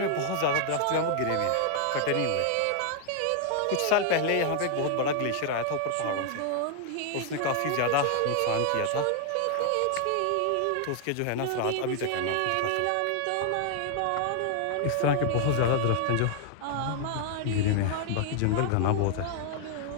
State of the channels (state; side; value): different; both; correlation 0.00